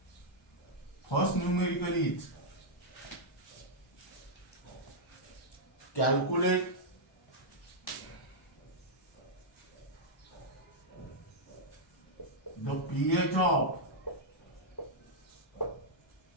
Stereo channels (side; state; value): both; normal; correlation -0.06